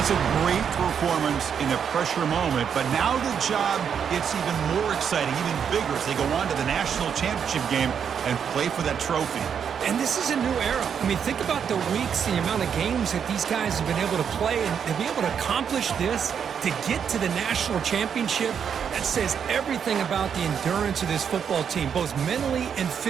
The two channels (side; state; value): left; quieter; 7.6 dB